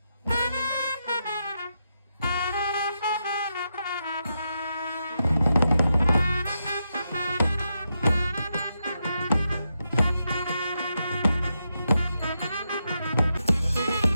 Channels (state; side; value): inverted; both; correlation -0.84